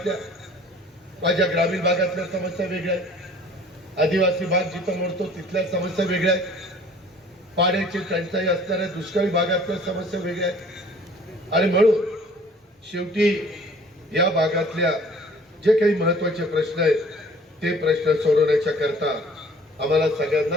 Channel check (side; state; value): both; normal; correlation 0.52